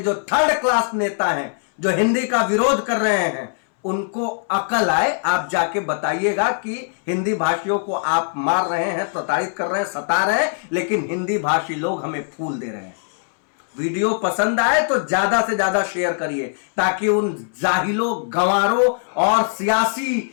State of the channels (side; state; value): right; silent; 64 dB below the other